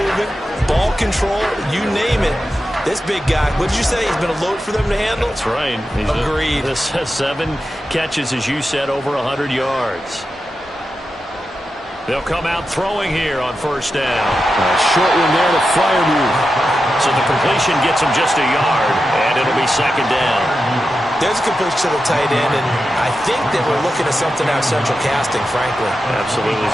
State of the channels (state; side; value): normal; both; correlation 0.90